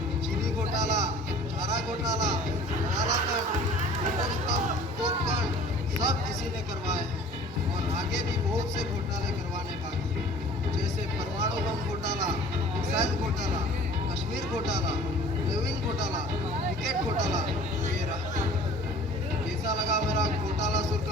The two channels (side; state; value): both; normal; correlation 0.47